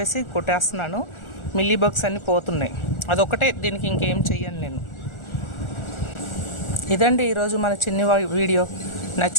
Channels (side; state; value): right; late; 1.4 ms